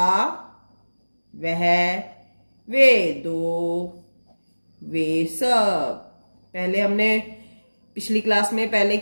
वह, वे दो, वे सब। पहले हमने पिछली क्लास में पहले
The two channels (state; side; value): inverted; both; correlation -1.00